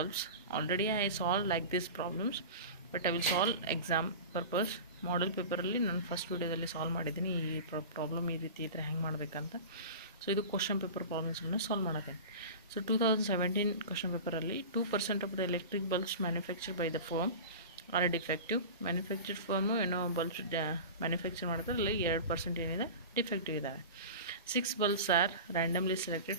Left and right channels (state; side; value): inverted; both; correlation -0.32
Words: Already I solved like these problems, but I will solve exam purpose. ಮಾಡಲ್ ಪೇಪರಲ್ಲಿ ನಾನು first ವಿಡಿಯೋದಲ್ಲಿ solve ಮಾಡಿದ್ದೀನಿ ಈ problem ಈ ರೀತಿ ಇದ್ದರೆ ಹೆಂಗೆ ಮಾಡಬೇಕಂತ. ಸೊ ಇದು ಕ್ವಶನ್ ಪೇಪರ್ ಪ್ರಾಬ್ಲಮ್ಸ್ಗಳನ್ನ ಸಾಲ್ವ್ ಮಾಡೋದೆ. ಸೊ 2017 ಕ್ವಶನ್ ಪೇಪರಲ್ಲಿ 2% of the electric bulbs manufactured by the firm are defective. Manufactured firm ಏನೋ ಬಲ್ಬ್ಸ್ ಮ್ಯಾನುಫ್ಯಾಕ್ಚರ್ ಮಾಡ್ತಾರೆ, ಅಲ್ಲಿ 2% ಏನಿದೆ ಡಿಫೆಕ್ಟಿವ್ ಇದ್ದಾವೆ. 6 bulbs are randomly